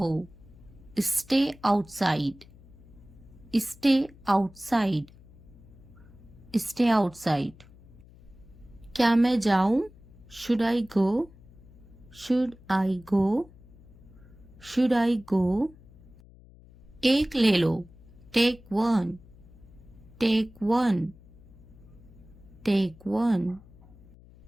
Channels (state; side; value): noise; left; hum, 23 dB below the sound